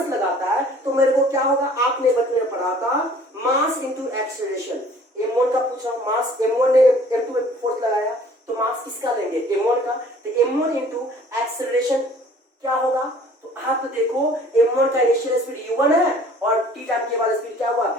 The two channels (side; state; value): both; normal; correlation 0.52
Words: लगाता है तो मेरे को क्या होगा, आपने बचपन में पढ़ा था मास इंटू एक्सेलरेशन। M1 का पूछ रहा हूं, मास M1 ने M2 पे फोर्स लगाया तो मास किसका लेंगे, M1 का, तो M1 इंटू एक्सेलरेशन क्या होगा, तो आप तो देखो M1 का इनिशियल स्पीड u1 है और t टाइम के बाद स्पीड क्या हुआ,